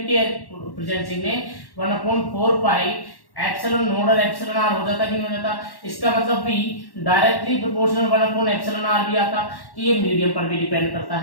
के प्रेजेंसी में 1 अपॉन 4 पाई एप्सिलॉन नोड और एप्सिलॉन आर हो जाता कि नहीं हो जाता? इसका मतलब भी directly proportional 1 upon epsilon r भी आता, कि ये मीडियम पर भी डिपेंड करता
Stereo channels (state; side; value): late; right; 1.1 ms